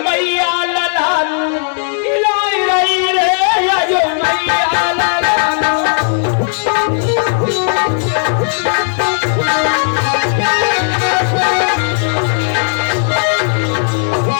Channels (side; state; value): right; silent; 68 dB below the other